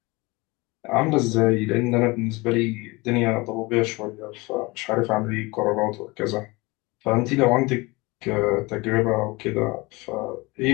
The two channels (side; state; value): right; quieter; 24.0 dB